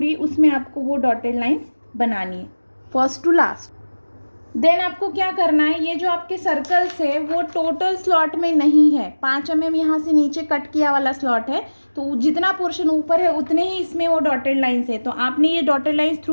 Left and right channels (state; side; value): inverted; both; correlation -1.00